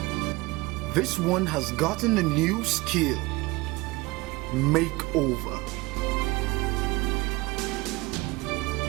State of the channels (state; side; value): quieter; left; 22.4 dB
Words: This one has gotten a new skill: makeover.